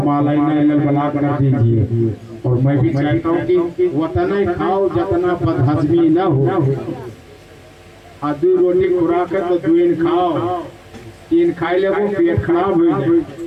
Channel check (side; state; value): both; identical; correlation 1.00